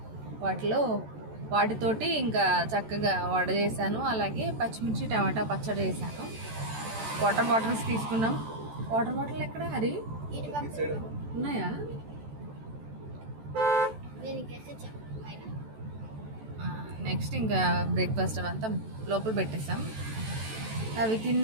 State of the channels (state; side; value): late; left; 14 ms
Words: వాటితోటి ఇంకా చక్కగా వడ చేశాను. అలాగే పచ్చిమిర్చి టమాటా పచ్చడి చేశాను. వాటర్ బాటిల్స్ తీసుకున్నాం. వాటర్ బాటిల్ ఎక్కడ హరి ఉన్నాయా? నెక్స్ట్ ఇంకా బ్రేక్ఫాస్ట్ అవంతా లోపల పెట్టేసాం. అవి